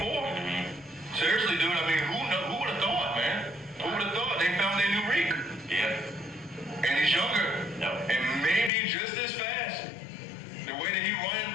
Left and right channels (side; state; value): right; drops out; at 8.7 s